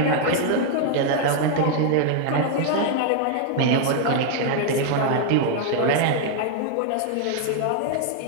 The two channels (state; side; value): different; both; correlation 0.00